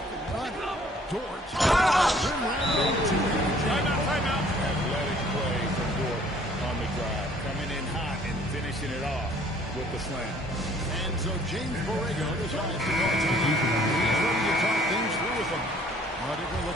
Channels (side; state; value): both; normal; correlation 0.57